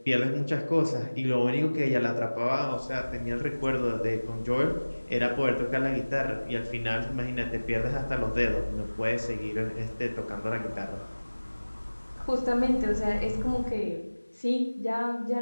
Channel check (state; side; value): inverted; both; correlation -1.00